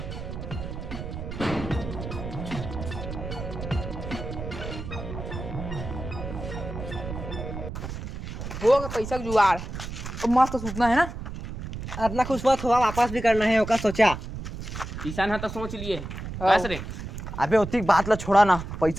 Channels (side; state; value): right; noise; rumble, 8 dB below the sound